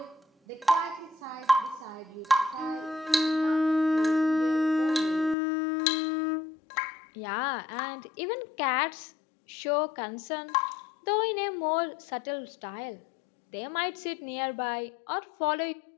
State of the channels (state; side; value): drops out; right; at 5.4 s